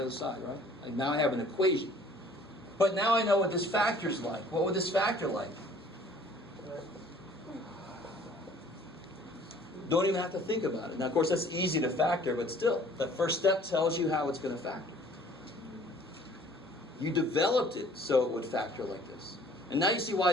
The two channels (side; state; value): both; normal; correlation 0.54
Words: side, right? Like now I have an equation. But now I know what this factor's like. What would this factor like? Don't even have to think about it. Now, of course, that's easy to factor, but still, the first step tells you how it's going to factor. You developed it so it would factor like this. And now you see why